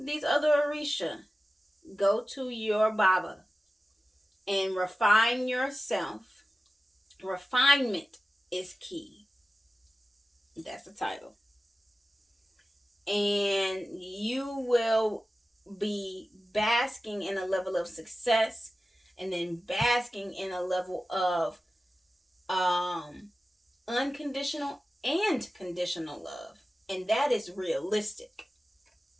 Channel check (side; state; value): both; normal; correlation 0.95